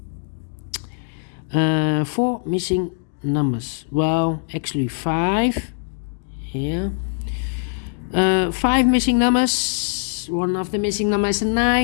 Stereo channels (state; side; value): silent; right; digital silence